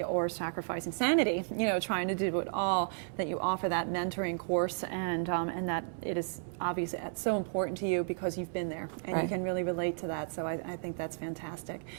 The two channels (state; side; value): silent; left; 56 dB below the other